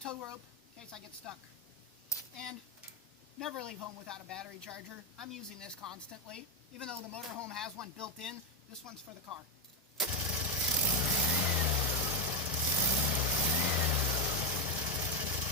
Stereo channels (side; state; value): both; normal; correlation 0.05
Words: tow rope in case I get stuck. And never leave home without a battery charger. I'm using this constantly. Even though the motorhome has one built in, this one's for the car.